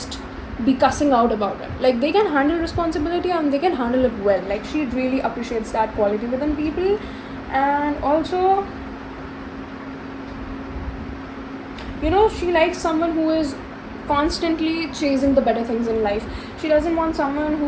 be cussing out about it. Like they can handle responsibility and they can handle it well. Like she really appreciates that quality within people. And also, you know, she likes someone who is constantly chasing the better things in life. She doesn't want someone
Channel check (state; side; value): identical; both; correlation 1.00